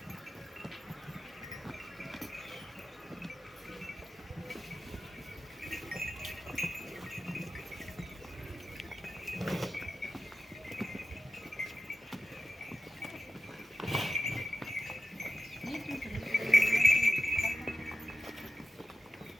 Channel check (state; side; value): normal; both; correlation 0.92